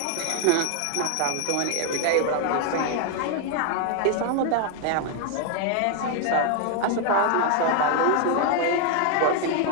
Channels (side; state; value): both; different; correlation 0.01